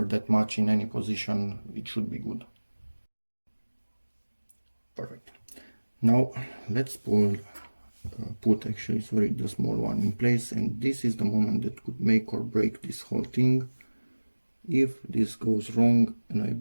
that much in any position, it should be good. Perfect. Now let's put actually, sorry, the small one in place, and this is the moment that could make or break this whole thing. If this goes wrong and I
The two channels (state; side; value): inverted; both; correlation -1.00